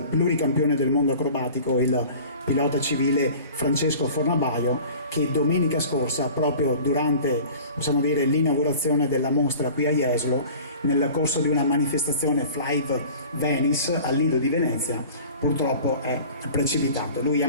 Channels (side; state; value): both; inverted; correlation -0.43